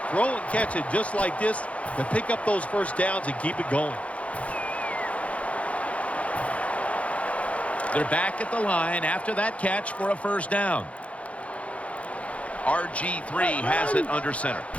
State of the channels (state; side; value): late; right; 0.064 ms